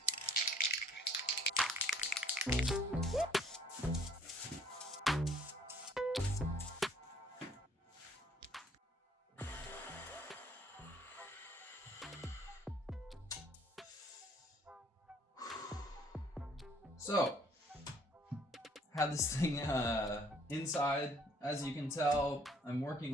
So, had this thing inside. As you can tell, I'm working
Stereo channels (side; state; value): both; normal; correlation 0.60